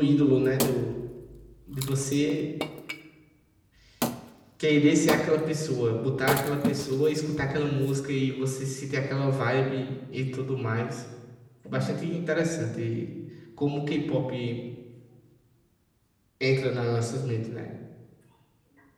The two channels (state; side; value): identical; both; correlation 1.00